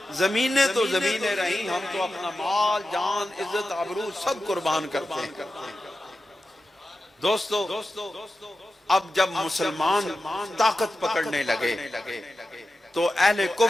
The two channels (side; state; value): both; normal; correlation 0.92